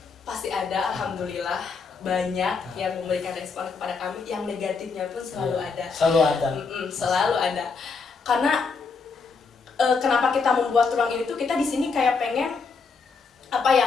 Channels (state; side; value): quieter; right; 4.8 dB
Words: Pasti ada, alhamdulillah banyak yang memberikan respon kepada kami, yang negatifnya pun selalu ada. Selalu ada. Selalu ada. Karena kenapa kita membuat ruang ini tuh, kita di sini kayak pengen